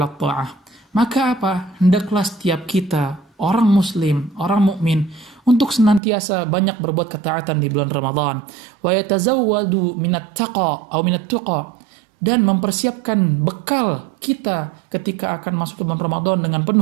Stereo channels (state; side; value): drops out; left; at 6.0 s